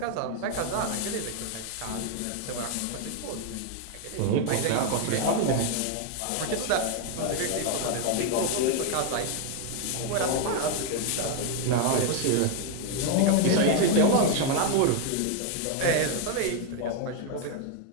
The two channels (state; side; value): different; both; correlation 0.01